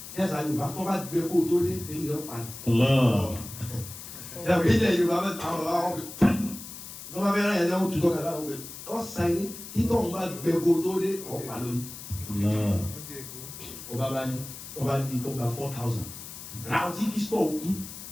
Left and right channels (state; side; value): noise; left; hiss, 12 dB below the sound